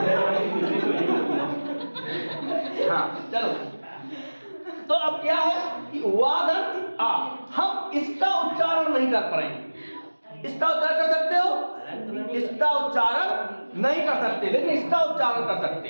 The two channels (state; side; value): inverted; both; correlation -1.00